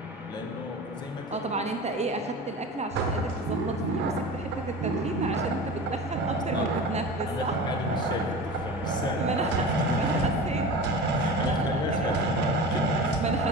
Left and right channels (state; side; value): normal; both; correlation 0.33